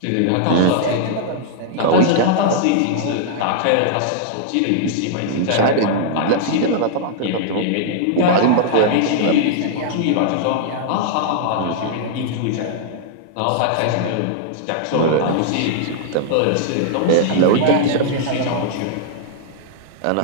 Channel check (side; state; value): both; different; correlation -0.01